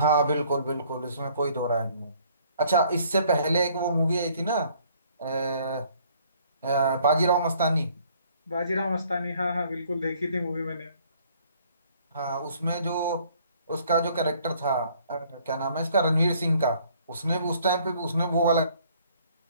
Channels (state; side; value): inverted; both; correlation -0.61